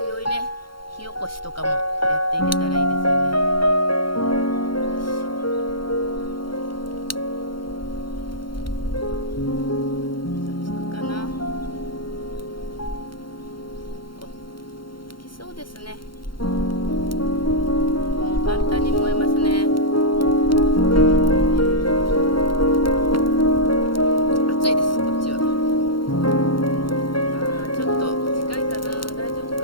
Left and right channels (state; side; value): late; right; 0.73 ms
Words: いね、火起こしとかもやっていけたらいいですよね。簡単に燃えますね。